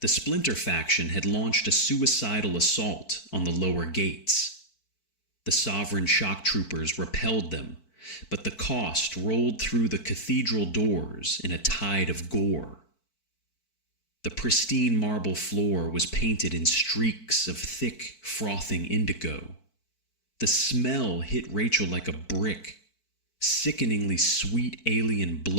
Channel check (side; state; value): right; late; 4.5 ms